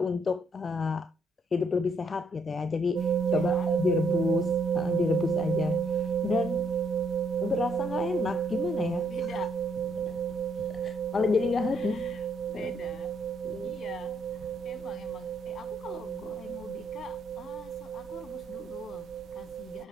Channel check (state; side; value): normal; both; correlation 0.71